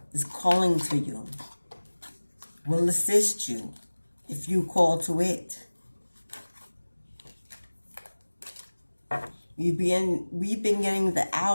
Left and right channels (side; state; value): both; inverted; correlation -1.00